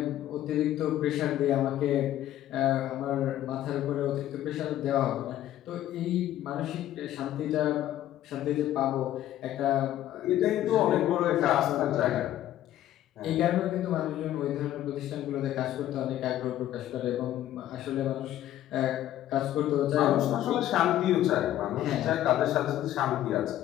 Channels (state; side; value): quieter; right; 12.8 dB